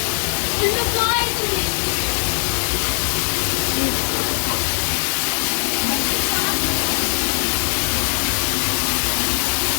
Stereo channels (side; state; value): right; silent; 59 dB below the other